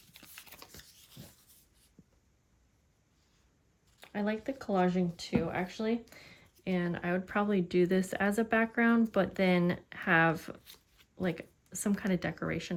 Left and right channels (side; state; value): both; identical; correlation 1.00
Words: I like the collaging too, actually. And I would probably do this as a background, but then have like some kind of